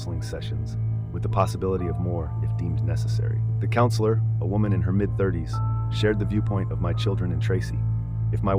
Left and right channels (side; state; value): both; identical; correlation 1.00